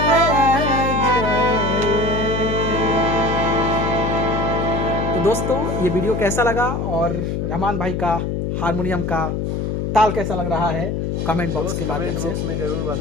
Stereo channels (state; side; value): noise; left; hum, 1 dB below the sound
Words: जाए। तो दोस्तों, ये वीडियो कैसा लगा और रहमान भाई का हारमोनियम का ताल कैसा लग रहा है, कमेंट बॉक्स के माध्यम से में जरूर